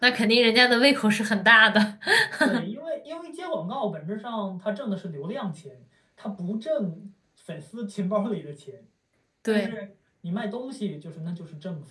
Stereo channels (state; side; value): identical; both; correlation 1.00